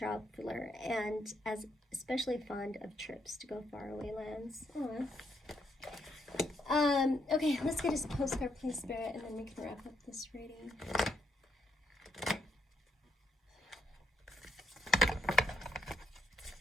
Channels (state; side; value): normal; both; correlation 0.75